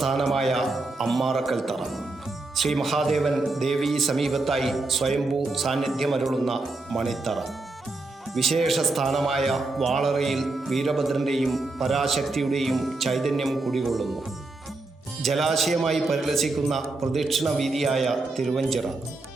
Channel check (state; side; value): quieter; left; 3.2 dB